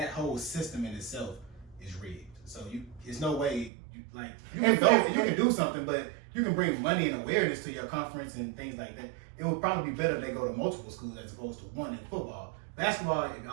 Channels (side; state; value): left; drops out; at 3.7 s